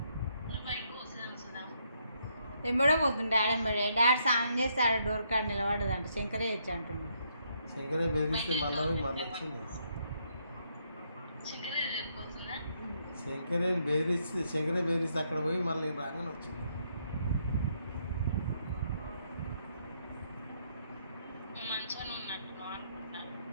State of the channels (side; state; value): both; inverted; correlation -0.74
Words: ఎంబడే పోతుంది డాడీ ఎంబడే. డాడీ స్నానం చేస్తే ఆడ డోర్ కాడ నిలబడదంట, శంకరే ఇచ్చి అంటుంది. శంకరే బెదిరిస్తే మళ్ళీ వచ్చింది. శంకరే బెదిరిస్తే అక్కడ పోయి మళ్ళీ రాగానే వచ్చింది.